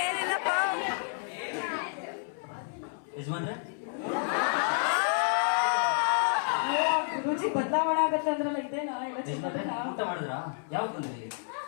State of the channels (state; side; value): silent; right; 58 dB below the other